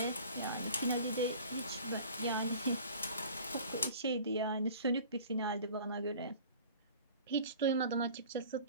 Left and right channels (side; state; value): both; inverted; correlation -0.45